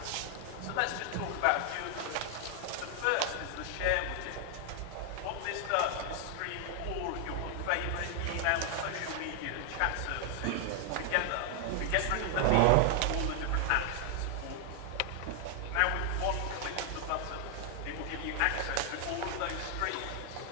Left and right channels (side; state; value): both; different; correlation 0.00